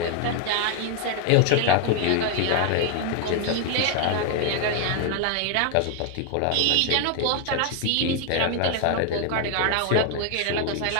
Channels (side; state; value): both; different; correlation 0.00